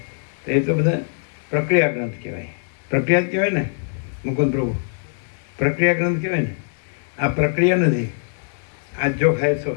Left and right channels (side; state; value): right; silent; digital silence